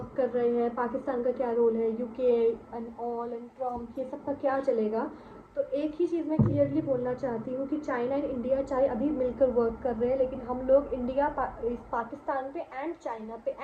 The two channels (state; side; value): identical; both; correlation 1.00